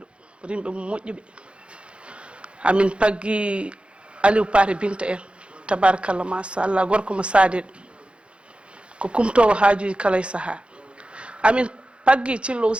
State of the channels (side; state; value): left; late; 0.058 ms